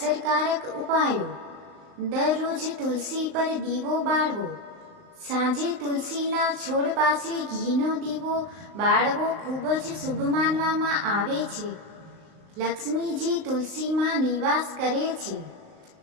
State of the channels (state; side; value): late; left; 38 ms